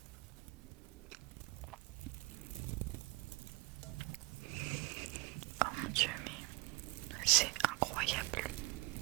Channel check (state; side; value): quieter; left; 25.0 dB